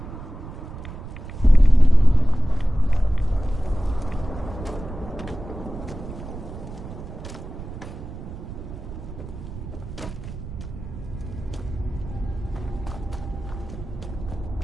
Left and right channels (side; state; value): right; noise; rumble, 11 dB below the sound